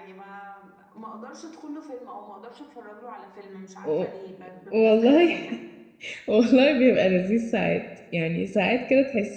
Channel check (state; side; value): identical; both; correlation 1.00